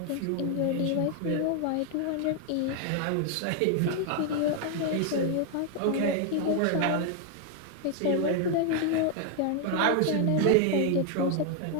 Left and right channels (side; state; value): both; different; correlation 0.00